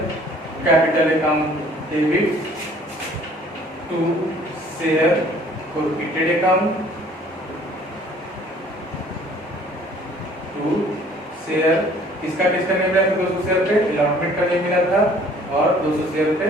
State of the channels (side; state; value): both; normal; correlation 0.55